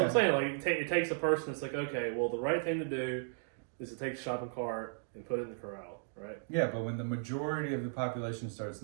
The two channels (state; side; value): silent; left; digital silence